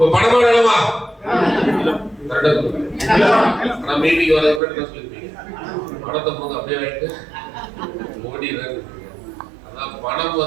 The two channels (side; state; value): left; drops out; at 4.6 s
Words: பணமா வேணுமா? ஆனா மீட்டிங் வரதுக்கு என்ன சொல்லிருப்பீங்க? பணத்தை போது அப்படியே வாங்கிட்டு ஓடிடுறேன். அதான் பணம்